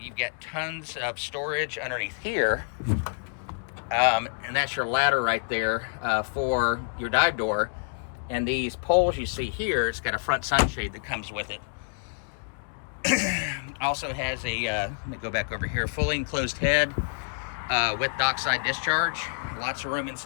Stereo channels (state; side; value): silent; right; digital silence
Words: got tons of storage underneath here, and that's your ladder right there for your dive door. And these poles you see here, it's got a front sunshade that comes with it. Also has a, let me go back over here, fully enclosed head with dockside discharge. Lots of room